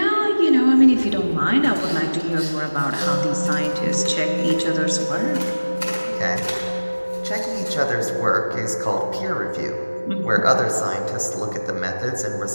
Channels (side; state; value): both; inverted; correlation -1.00